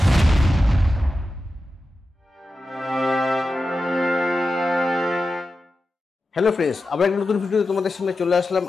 হ্যালো ফ্রেন্ডস, আবার একটা নতুন ভিডিও তোমাদের সামনে চলে আসলাম।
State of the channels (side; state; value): both; normal; correlation 0.92